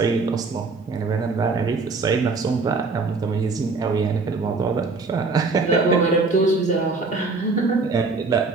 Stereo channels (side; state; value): left; quieter; 4.0 dB